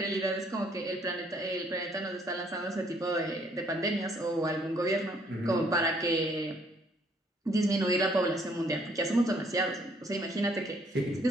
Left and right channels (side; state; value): both; normal; correlation 0.65